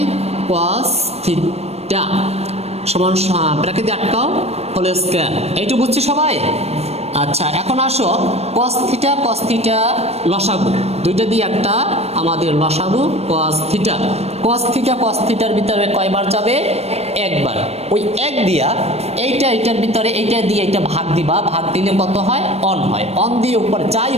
থিটা সমান ব্র্যাকেট দিয়ে আটকাও হোল স্কয়ার। এইটুকু বুঝছি সবাই? আচ্ছা, এখন আসো cos থিটা লসাগু, দুইটা দিয়ে একটা আমাদের লসাগু cos থিটার ভিতরে কয়বার যাবে, একবার। ওই এক দিয়া এইটার ভিতরে এইটা দিয়ে এইটা ভাগ দিবা, ভাগ দিলে কত হয়, অন হয়, অন দিয়ে উপরে যাই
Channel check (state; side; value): late; left; 0.31 ms